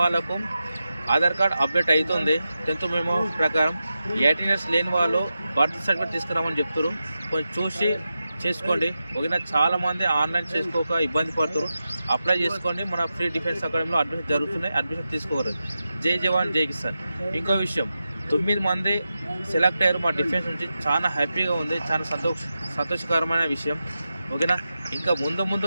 ఆధార్ కార్డ్ అప్డేట్ అవుతుంది 10th మెమో ప్రకారం. 18 ఇయర్స్ లేని వాళ్ళు బర్త్ సర్టిఫికేట్ తీసుకురామని చెప్తారు. కొంచెం చూసి చేసుకోండి. ఓకేనా. చాలామంది ఆన్లైన్ చేసుకోక ఇబ్బంది పడుతారు. అప్లై చేసుకోండి. మన ఫ్రీ డిఫెన్స్ అకాడమీలో అడ్మిషన్ జరుగుతున్నాయి, అడ్మిషన్ తీసుకోగలరు. జై జవాన్ జై కిసాన్. ఇంకో విషయం, 9 మంది సెలెక్ట్ అయ్యారు మా డిఫెన్స్ నుంచి. చాలా హ్యాపీగా ఉంది, చాలా సంతోషకరమైన విషయం. ఓకేనా. ఇంకా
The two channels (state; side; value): inverted; both; correlation -0.91